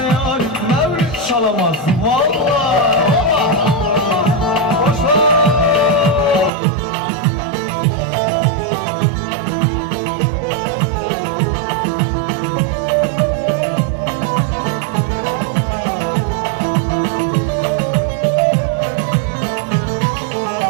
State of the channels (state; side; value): drops out; left; at 6.5 s